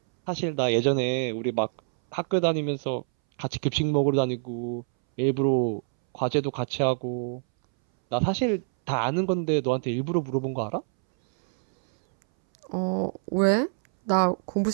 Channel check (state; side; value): silent; left; 61 dB below the other